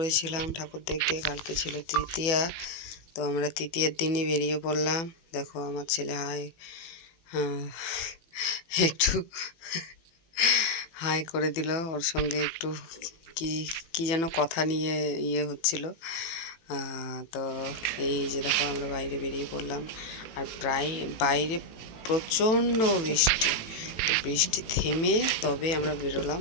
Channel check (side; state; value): right; late; 18 ms